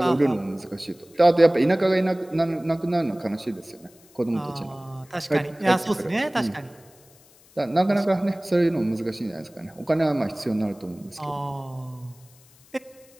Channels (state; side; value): noise; left; hiss, 28 dB below the sound